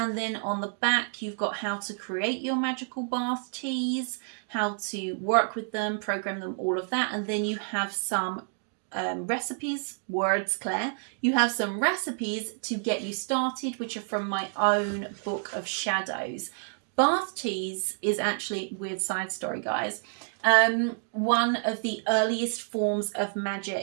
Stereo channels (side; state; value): left; silent; 59 dB below the other